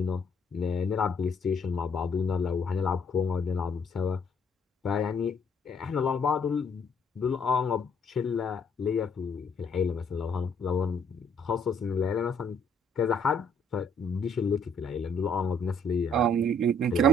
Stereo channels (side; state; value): both; normal; correlation 0.65